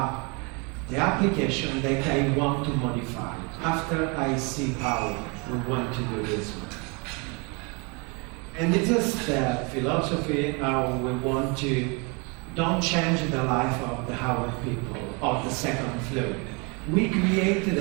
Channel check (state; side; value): quieter; left; 31.3 dB